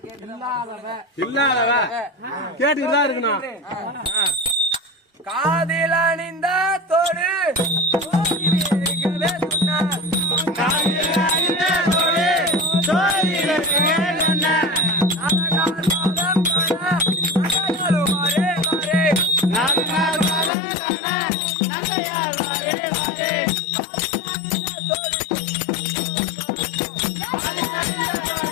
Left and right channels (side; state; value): right; drops out; at 20.5 s